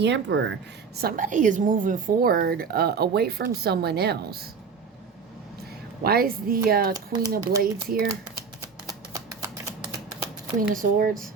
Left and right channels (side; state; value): left; quieter; 5.5 dB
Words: Emperor. Somebody is moving forward away from someone else. Why is the Queen of Blades here? Queen of Swords.